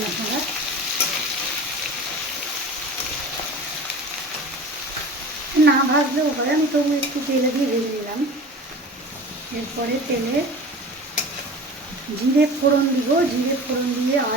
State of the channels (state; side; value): normal; both; correlation 0.37